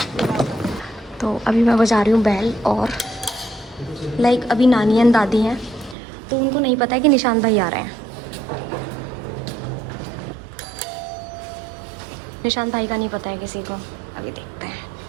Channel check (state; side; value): drops out; left; at 6.0 s